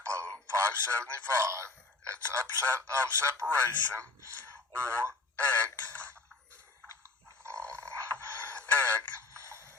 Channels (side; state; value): right; quieter; 3.6 dB